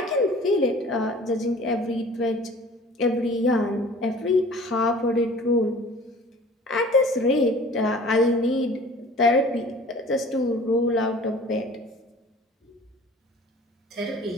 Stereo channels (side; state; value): both; normal; correlation 0.46